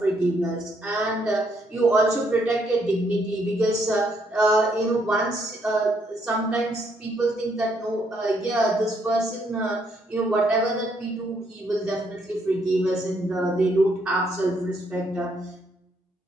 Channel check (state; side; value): normal; both; correlation 0.72